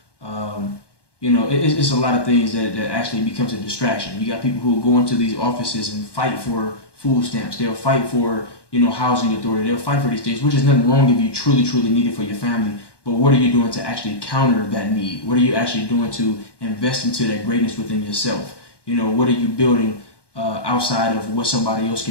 you know, it's a lot of things that actually becomes a distraction. You got people who go into these offices and fight for food stamps. They'll fight for, you know, housing authority. They'll fight for these things, which is nothing wrong if you truly need it for your family. But what are you doing to actually counter that need? What are you actually doing to invest into that greatness within yourself? You know, what are you building outside of what somebody else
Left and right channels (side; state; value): right; late; 1.2 ms